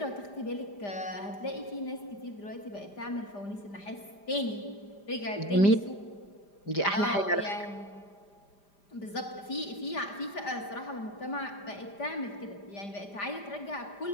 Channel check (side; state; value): right; late; 5.0 ms